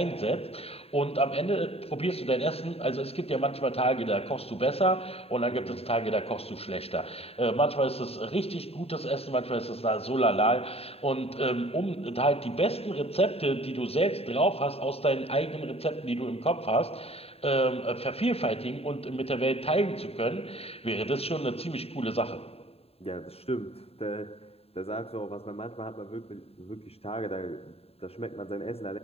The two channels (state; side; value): late; right; 0.29 ms